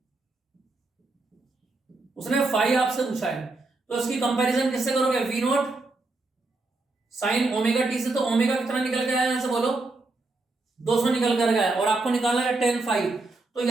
उसने 5 आपसे पूछा है। तो इसकी कंपैरिजन किससे करोगे, V0 साइन ओमेगा टी से। तो ओमेगा कितना निकल के आया यहां से बोलो 200 निकल कर गया, और आपको निकालना है tan 5। तो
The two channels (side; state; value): left; quieter; 3.3 dB